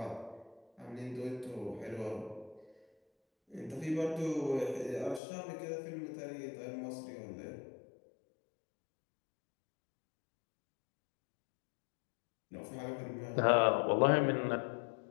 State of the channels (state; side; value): drops out; right; at 5.2 s